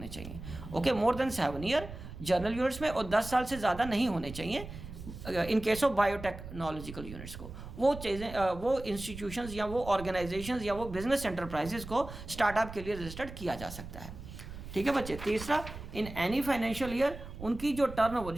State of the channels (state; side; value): noise; right; rumble, 12 dB below the sound